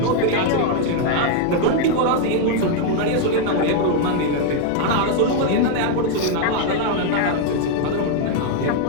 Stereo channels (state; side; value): different; both; correlation 0.00